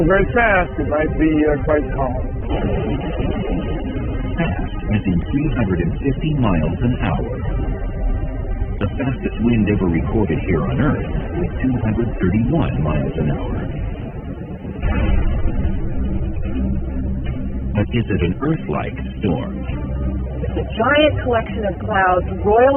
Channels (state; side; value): identical; both; correlation 1.00